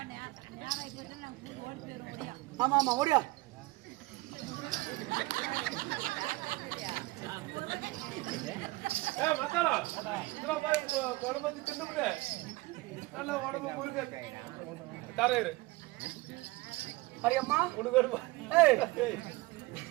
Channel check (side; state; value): left; quieter; 21.6 dB